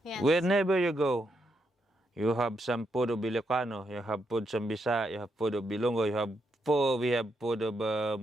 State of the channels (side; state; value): both; normal; correlation 0.81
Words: Yes. Wherever you go, you have some food of Ilocano, you have food of Bisaya, you have food of Bilongo, we have food of